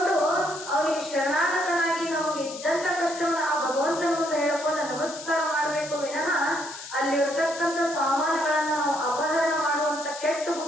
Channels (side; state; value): left; noise; hiss, 12 dB below the sound